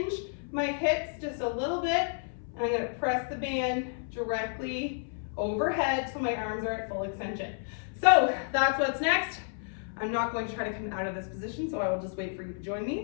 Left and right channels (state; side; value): silent; right; 57 dB below the other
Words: my hips just a little bit, and I'm gonna press the band directly overhead so my arms are at full extension. So that's what's next. I'm not going to try to come out of this position, so I will just wait for you to join